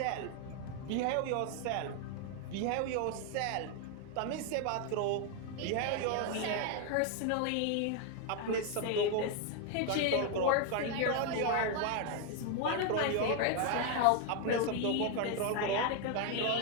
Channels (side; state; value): both; different; correlation 0.01